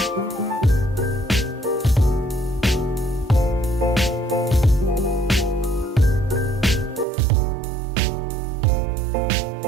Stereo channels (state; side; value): drops out; left; at 7.1 s